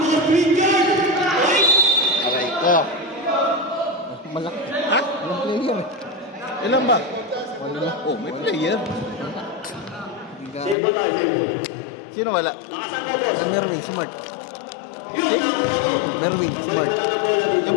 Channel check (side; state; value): right; drops out; at 10.8 s